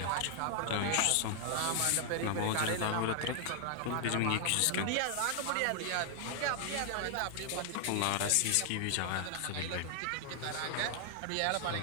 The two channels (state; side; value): different; both; correlation 0.00